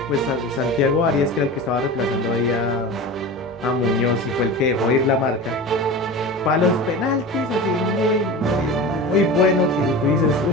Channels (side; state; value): both; normal; correlation 0.31